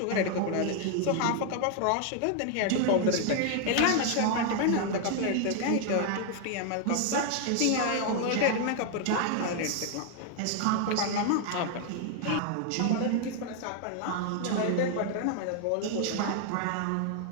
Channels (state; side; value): different; both; correlation 0.00